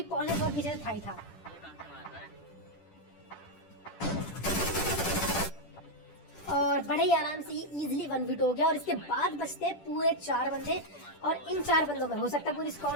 पॉल ने बहुत पीछे था ही था। और बड़े ही आराम से ये इजीली 1v2 हो गया। और इसके बाद बचते हैं पूरे 4 बंदे, और इन 4 बंदों में हो सकता है पूरी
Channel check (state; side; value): late; right; 10 ms